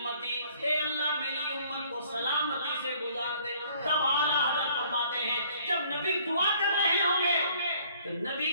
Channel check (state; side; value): inverted; both; correlation -0.59